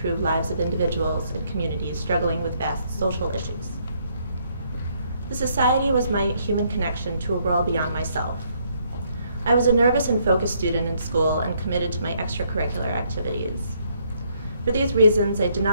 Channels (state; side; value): inverted; both; correlation -0.70